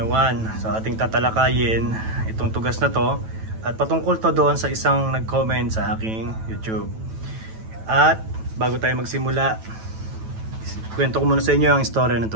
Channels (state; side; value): late; left; 9.1 ms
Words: So ating tatalakayin itong tugas na to at patungkol to doon sa isang nag-comment sa aking YouTube. At bago tayo magsimula, kwento ko muna sa inyo ang istorya ng